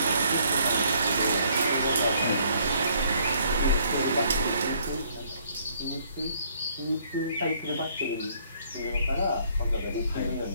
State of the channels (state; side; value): inverted; both; correlation -0.64